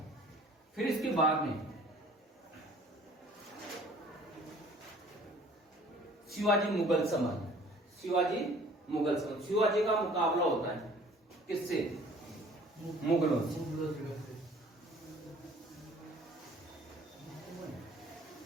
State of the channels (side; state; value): both; normal; correlation 0.52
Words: फिर इसके बाद में शिवाजी मुगल संबंध। शिवाजी का मुकाबला होता है किससे? मुगलों से।